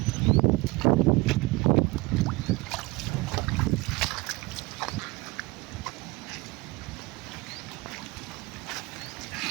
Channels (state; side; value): quieter; left; 23.2 dB